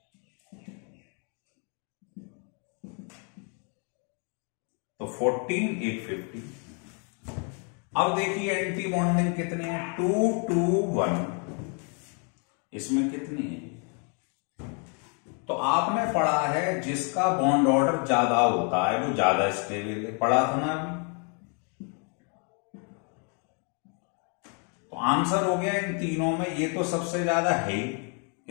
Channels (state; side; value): quieter; right; 38.7 dB